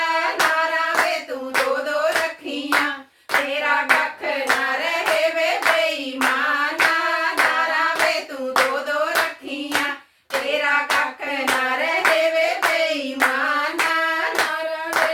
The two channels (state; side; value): identical; both; correlation 1.00